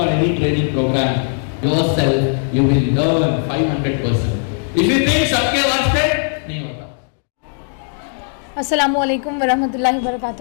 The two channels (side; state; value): right; silent; 55 dB below the other